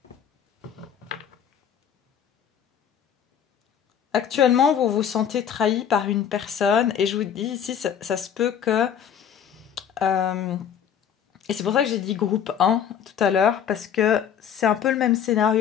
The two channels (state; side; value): quieter; right; 8.5 dB